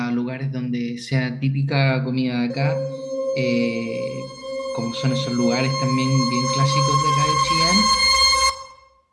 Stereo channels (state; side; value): identical; both; correlation 1.00